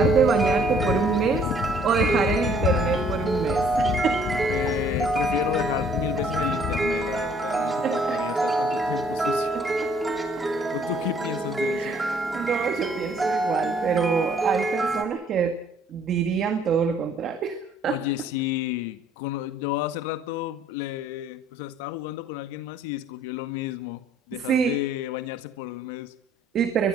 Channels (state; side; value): normal; both; correlation 0.61